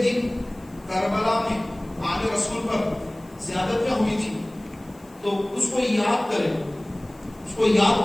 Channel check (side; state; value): left; noise; hiss, 28 dB below the sound